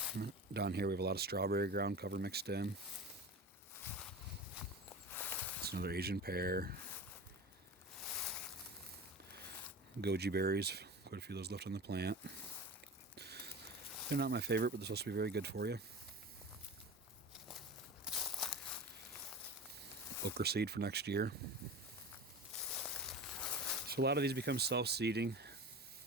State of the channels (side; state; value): both; normal; correlation 0.31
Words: Down here we have a lot of strawberry ground cover mixed in. It's another Asian pear. Goji berries, quite a few of those left on the plant. They're not my favorite, but they're supposed to be very good for you. Okra seed for next year. So a lot of these become self-seeding.